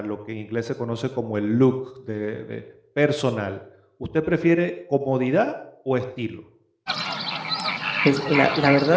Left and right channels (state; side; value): identical; both; correlation 1.00